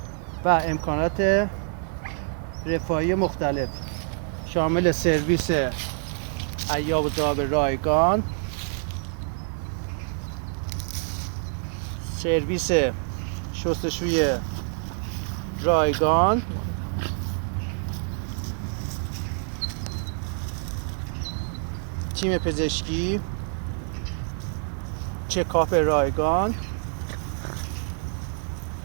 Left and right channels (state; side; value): silent; left; 59 dB below the other